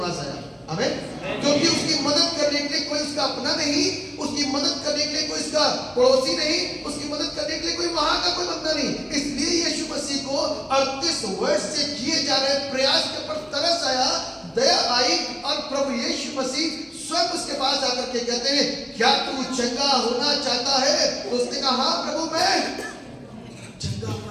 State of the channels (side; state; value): both; identical; correlation 1.00